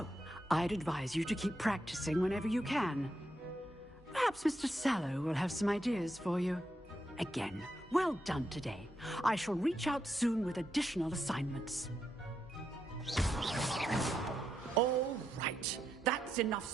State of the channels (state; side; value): normal; both; correlation 0.82